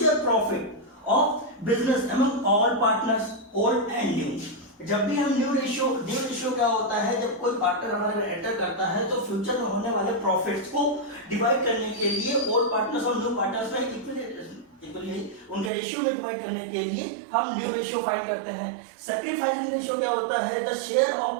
profit of business among all partners old and new. जब भी हम न्यू रेशियो क्या होता है, जब कोई पार्टनर हमारे एंटर करता है तो फ्यूचर में होने वाले प्रॉफिट्स को डिवाइड करने के लिए ओल्ड पार्टनर्स और न्यू पार्टनर्स में इक्वली उनके रेशियो में डिवाइड करने के लिए हम न्यू रेशियो फाइंड करते हैं। सैक्रिफाइसिंग रेशियो क्या होता है, the share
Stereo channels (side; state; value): left; drops out; at 15.7 s